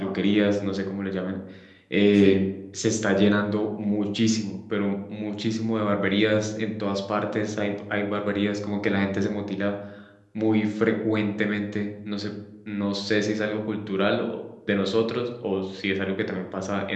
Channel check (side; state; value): both; identical; correlation 1.00